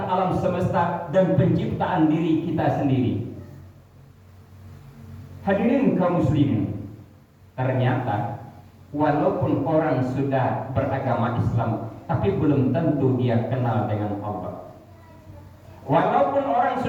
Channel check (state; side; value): identical; both; correlation 1.00